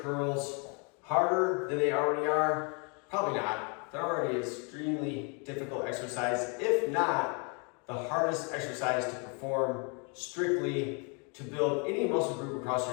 curls harder than they already are? Probably not. They're already an extremely difficult exercise, if not the hardest exercise to perform strictly to build any muscle group across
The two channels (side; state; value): right; quieter; 35.1 dB